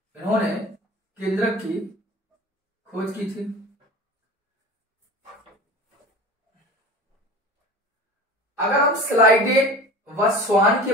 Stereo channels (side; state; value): both; normal; correlation 0.36